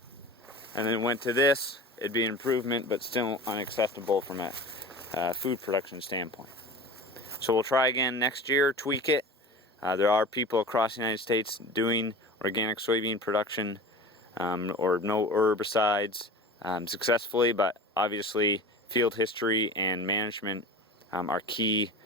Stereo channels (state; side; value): normal; both; correlation 0.35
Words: and then went to this, it'd be an improvement, but still unacceptable from a food production standpoint. So we'll try again next year, tweak it. There are people across the United States doing organic soybean production or no herbicides successfully, but obviously field history and management are key